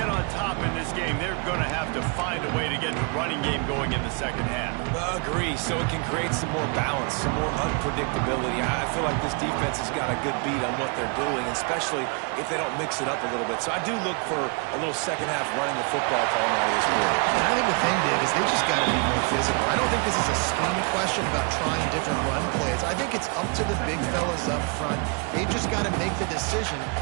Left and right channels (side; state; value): left; quieter; 34.8 dB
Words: on top in this game, they're going to have to find a way to get the running game going in the second half. Agree, so it can create some more balance, some more unpredictability. I feel like this defense has got a good beat on what they're doing, especially if they don't mix it up a little bit. So I do look for a little second half running the football calm out of this quarter. And I think the thing, Dave, is they just got to be more physical. I don't think this is a scheme question about trying different run plays. I think it's up to the big fellas up front. They've just got to make the decision